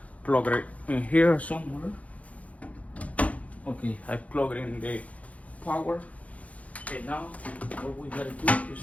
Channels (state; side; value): late; right; 0.068 ms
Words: plug it in here somewhere. Okay, I plug it in the power. And now what we gotta do